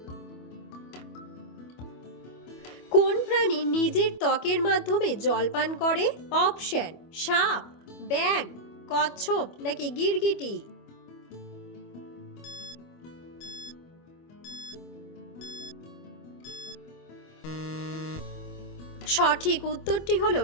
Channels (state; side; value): late; right; 25 ms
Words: প্রাণী নিজের ত্বকের মাধ্যমে জল পান করে? অপশন: সাপ, ব্যাঙ, কচ্ছপ নাকি গিরগিটি। সঠিক উত্তরটি হলো